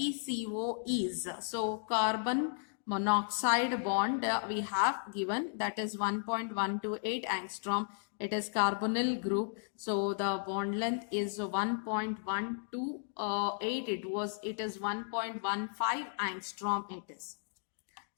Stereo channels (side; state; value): right; silent; digital silence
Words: is, so carbon monoxide bond we have given, that is 1.128 angstrom. It is carbonyl group. So the bond length is 1.128. It is 1.15 angstrom it is.